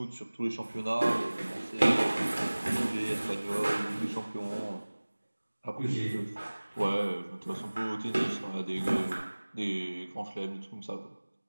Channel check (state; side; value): inverted; both; correlation -1.00